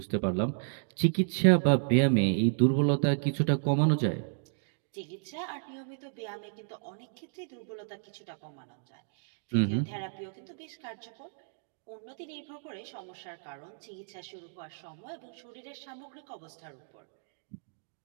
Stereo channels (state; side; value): silent; left; digital silence